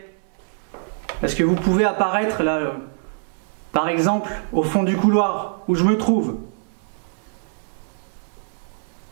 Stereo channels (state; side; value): silent; left; digital silence